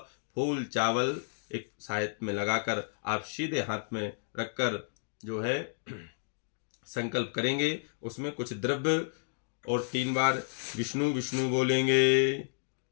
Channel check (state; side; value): silent; right; digital silence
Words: फूल चावल एक सायत में लगाकर आप सीधे हाथ में रखकर जो है संकल्प करेंगे। उसमें कुछ द्रव्य और 3 बार विष्णु विष्णु बोलेंगे।